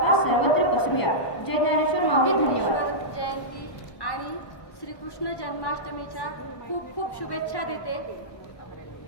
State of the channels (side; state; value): right; late; 1.2 ms